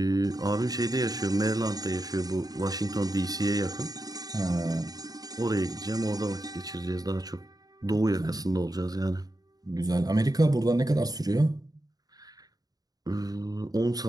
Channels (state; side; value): late; left; 0.18 ms